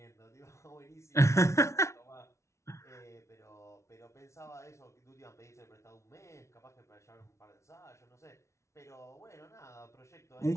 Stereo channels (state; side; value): late; right; 0.13 ms